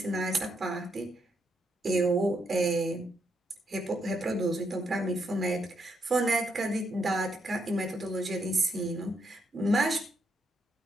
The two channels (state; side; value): normal; both; correlation 0.78